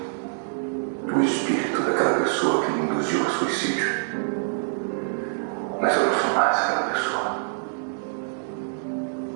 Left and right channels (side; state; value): left; silent; digital silence